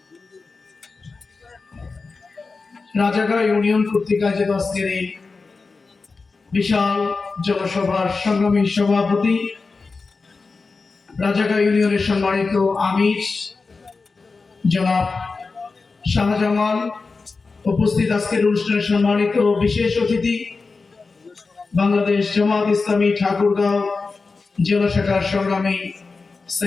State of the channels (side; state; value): right; quieter; 4.2 dB